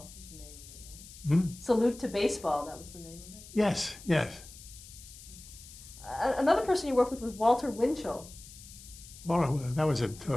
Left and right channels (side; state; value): left; noise; hiss, 17 dB below the sound